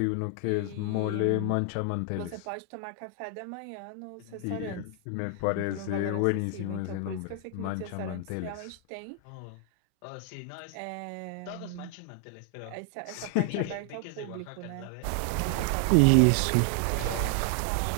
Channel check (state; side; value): different; both; correlation 0.00